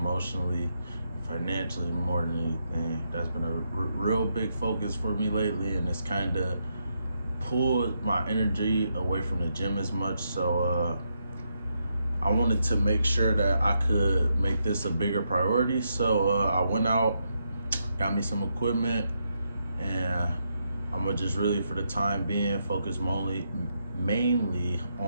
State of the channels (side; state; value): both; inverted; correlation -0.80